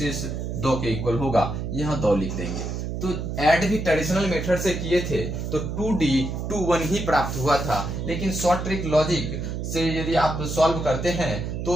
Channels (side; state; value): right; noise; hum, 4 dB below the sound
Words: 2 के इक्वल होगा, यहाँ 2 लिख देंगे। तो ऐड भी ट्रेडिशनल मेथड से किए थे तो 2D 21 ही प्राप्त हुआ था, लेकिन शॉर्ट ट्रिक लॉजिक से यदि आप सॉल्व करते हैं